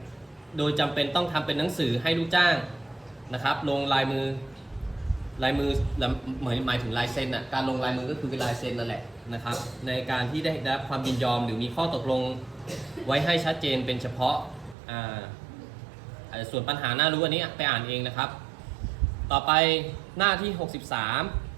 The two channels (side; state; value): left; drops out; at 14.8 s